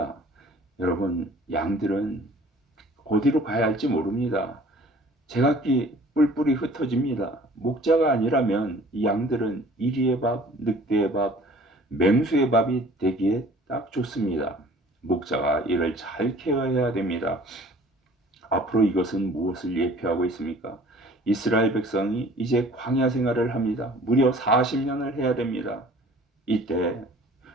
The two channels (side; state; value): both; normal; correlation 0.50